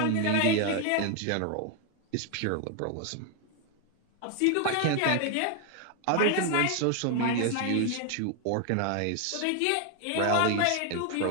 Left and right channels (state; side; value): different; both; correlation 0.01